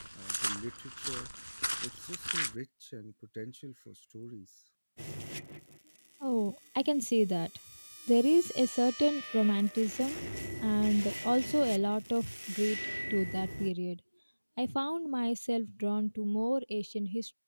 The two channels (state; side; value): inverted; both; correlation -1.00